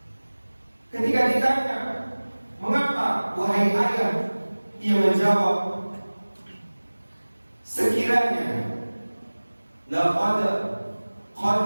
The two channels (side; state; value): both; inverted; correlation -1.00